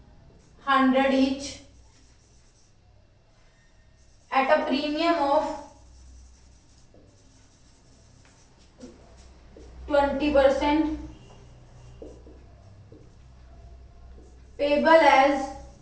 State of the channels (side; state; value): both; identical; correlation 1.00